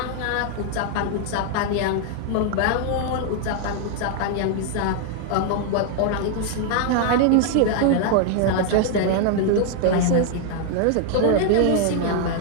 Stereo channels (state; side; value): different; both; correlation 0.00